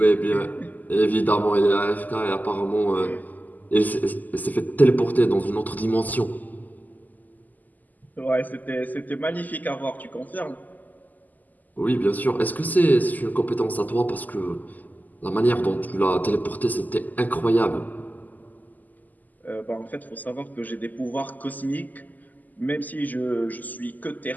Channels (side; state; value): right; late; 0.082 ms